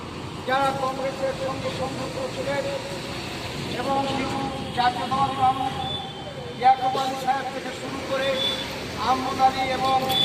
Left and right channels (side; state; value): both; identical; correlation 1.00